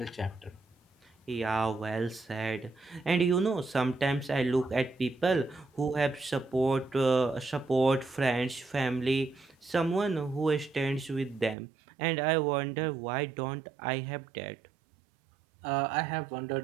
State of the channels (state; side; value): drops out; left; at 11.6 s